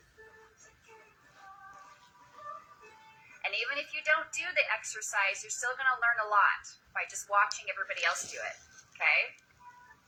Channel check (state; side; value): identical; both; correlation 1.00